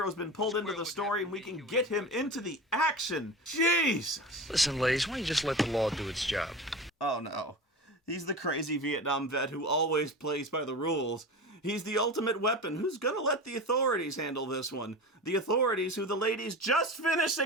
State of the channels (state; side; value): normal; both; correlation 0.30